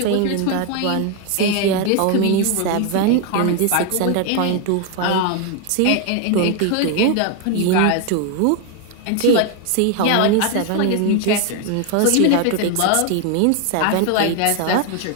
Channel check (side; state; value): both; different; correlation 0.01